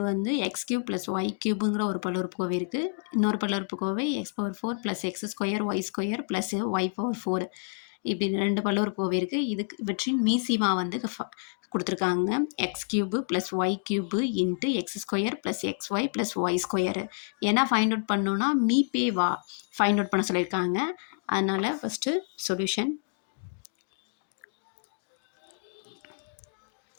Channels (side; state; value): right; silent; 59 dB below the other